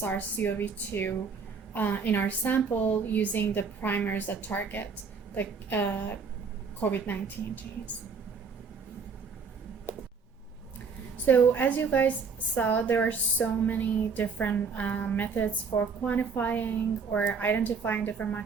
in our sample using the primers that target the COVID-19 genes. So as you guys saw, there are so many different methods for quantifying or identifying different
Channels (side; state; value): left; quieter; 5.3 dB